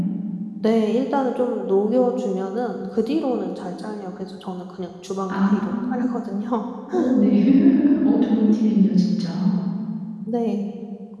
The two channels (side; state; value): both; identical; correlation 1.00